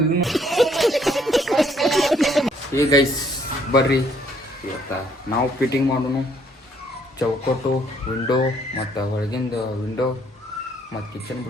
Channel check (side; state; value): both; normal; correlation 0.65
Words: ಇನ್ನು ಏ ಗೈಸ್ ಬರ್ರಿ ಇವತ್ತ ನಾವು ಫಿಟ್ಟಿಂಗ್ ಮಾಡೋನು ಚೌಕಟ್ಟು ವಿಂಡೋ ಮತ್ತು ಹೊಳಗಿಂದ ವಿಂಡೋ ಮತ್ತು ಕಿಚನ್